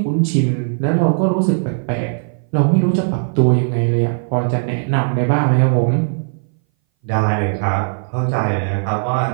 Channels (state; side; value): silent; left; 61 dB below the other